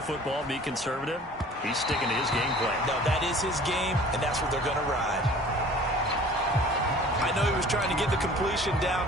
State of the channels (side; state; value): both; normal; correlation 0.47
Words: football, be conservative. He's sticking to his game plan. No, that is his game, and that's what they're going to ride. I know he was trying to get the completion